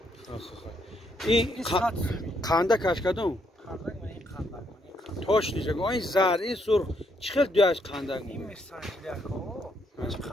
این قنده کش کدوم؟ قندق من این قندق. توش نیست. این زرد این سرخ چقدر دیاش قندق؟ این میرسانجلیه کو. چه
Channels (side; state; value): both; normal; correlation 0.74